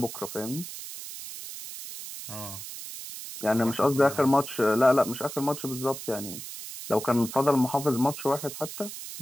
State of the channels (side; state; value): right; noise; hiss, 10 dB below the sound